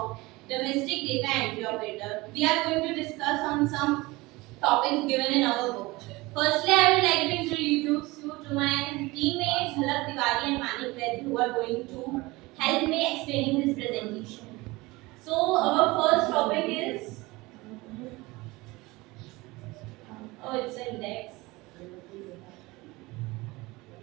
domestic data entry operator. We are going to discuss on some topics given in our book. Firstly, I would like to introduce you to my teammates Jhalak Tiwari and Manik Vaid, who are going to help me explaining this presentation. So our first topic is it's index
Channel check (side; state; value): left; quieter; 21.9 dB